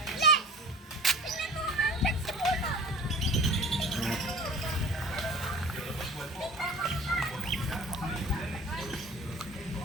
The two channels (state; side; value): normal; both; correlation 0.41